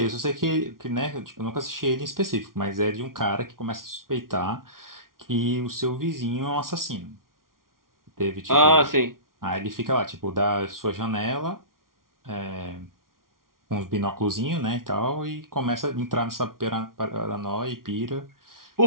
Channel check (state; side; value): late; left; 0.92 ms